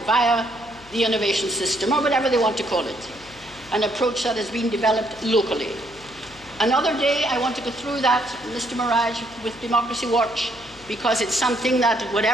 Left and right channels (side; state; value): left; noise; hum, 23 dB below the sound